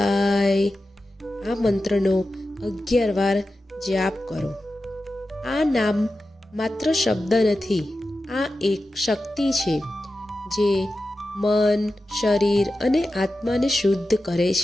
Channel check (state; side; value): normal; both; correlation 0.92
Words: આ મંત્રનો 11 વાર જાપ કરો. આ નામ માત્ર શબ્દ નથી, આ એક શક્તિ છે જે મન, શરીર અને આત્માને શુદ્ધ કરે